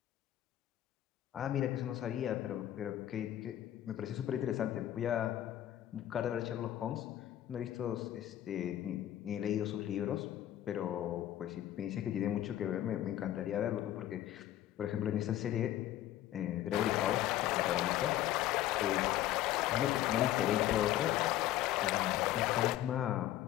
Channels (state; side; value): quieter; right; 13.0 dB